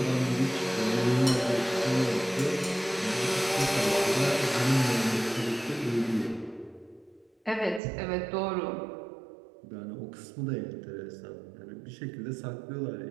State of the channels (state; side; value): drops out; left; at 7.8 s